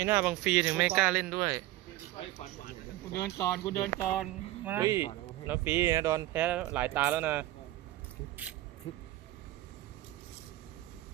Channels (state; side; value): quieter; left; 16.3 dB